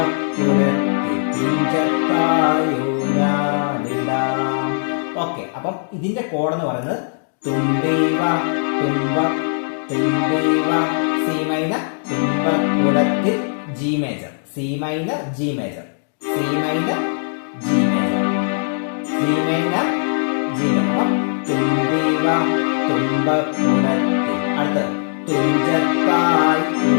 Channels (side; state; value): right; silent; digital silence